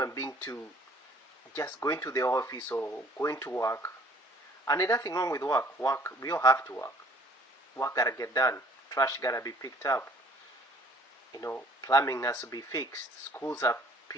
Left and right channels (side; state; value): both; normal; correlation 0.56